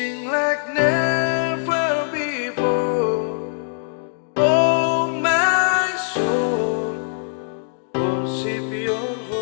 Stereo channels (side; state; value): right; silent; digital silence